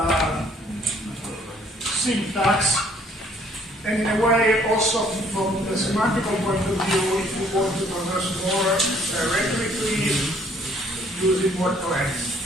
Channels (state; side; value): normal; both; correlation 0.61